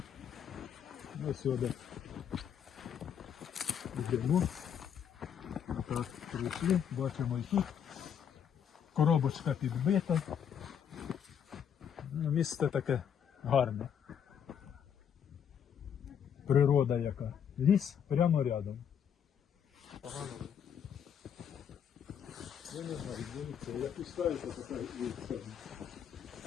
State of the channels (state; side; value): quieter; right; 8.3 dB